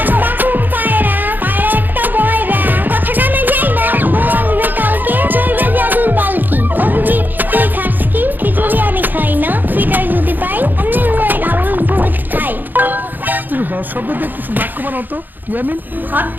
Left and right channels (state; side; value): late; left; 0.088 ms